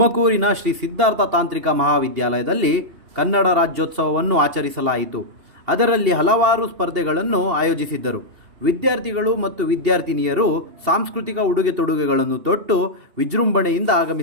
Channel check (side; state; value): left; late; 2.8 ms